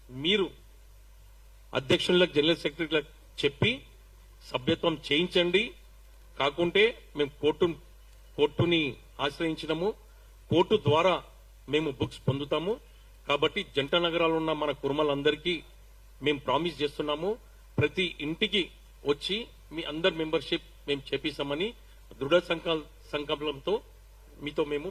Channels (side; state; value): both; identical; correlation 1.00